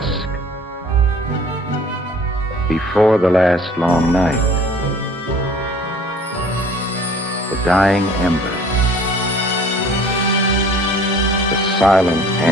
before the last long night? The dying embers, the silent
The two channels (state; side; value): normal; both; correlation 0.51